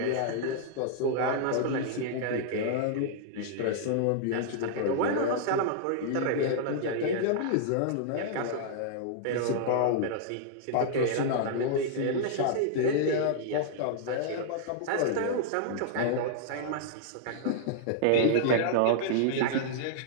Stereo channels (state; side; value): different; both; correlation -0.01